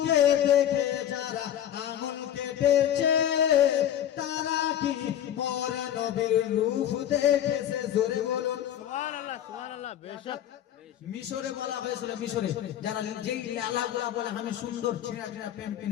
দেখে যারা আঙুল কেটেছে তারা কি মোর নবীর রূপ দেখেছে জোরে বলো সুবহানাল্লাহ সুবহানাল্লাহ বেশক মিশরে বলা হয়েছিল মিশরে যারা যেই লালাগুলা বলে আমি সুন্দর ছিনা ছিনা পেন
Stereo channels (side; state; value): right; quieter; 10.8 dB